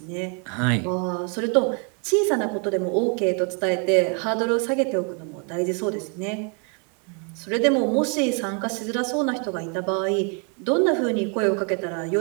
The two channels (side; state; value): left; quieter; 38.0 dB